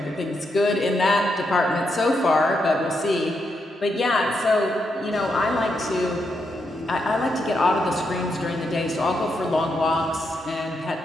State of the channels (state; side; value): normal; both; correlation 0.81